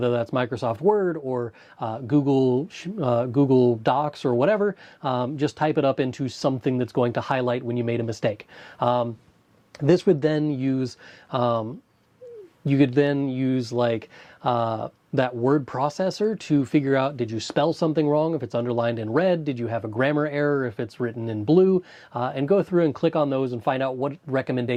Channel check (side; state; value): both; identical; correlation 1.00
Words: that's Microsoft Word or Google Docs or whatever, just type it up into something that's going to highlight when you made a mistake. This would then use, you could then use like that word processor to figure out, did you spell something wrong if it's underlined in red? Did you have a grammar error if it's written in blue? And go through and click on those and find out what